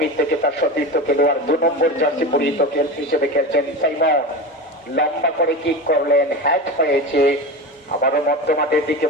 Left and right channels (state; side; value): normal; both; correlation 0.25